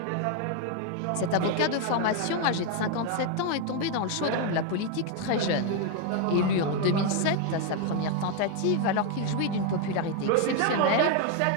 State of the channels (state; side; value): different; both; correlation 0.01